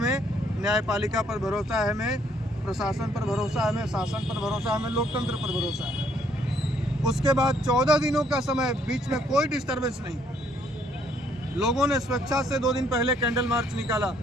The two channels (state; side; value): normal; both; correlation 0.67